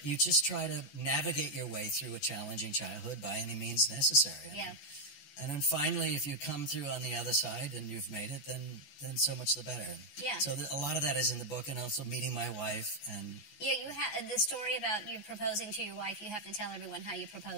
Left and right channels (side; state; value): right; late; 14 ms